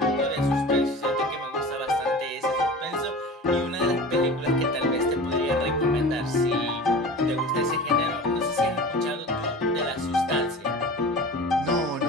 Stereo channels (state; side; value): normal; both; correlation 0.36